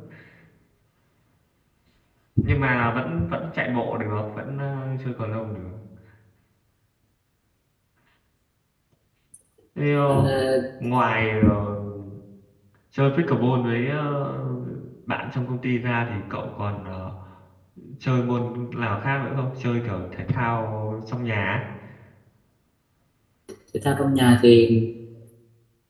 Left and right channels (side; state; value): both; identical; correlation 1.00